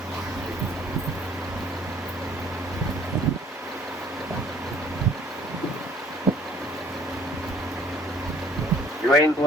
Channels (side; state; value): both; normal; correlation 0.57